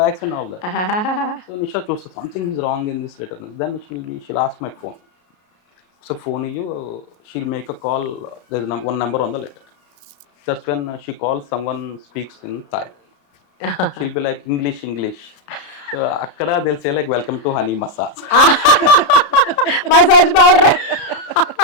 bags and all that. So Nisha chose something is wrong in this letter. Then she'll ask my phone. So phone you, she'll make a call. There's one number on the letter. That's when she calls, someone speaks in Thai. She'll be like English. So akkada they'll say like, welcome to honey massage. Massage powder.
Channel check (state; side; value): late; right; 33 ms